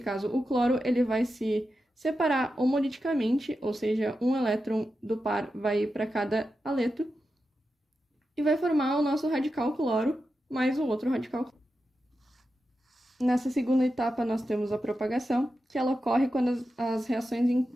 o cloro, ele vai se separar homoliticamente, ou seja, um elétron do par vai ir para cada aleto, e vai formar o nosso radical cloro mais o outro radical cloro. Nessa segunda etapa, nós temos a propagação, que ela ocorre quando as reações em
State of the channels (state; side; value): normal; both; correlation 0.90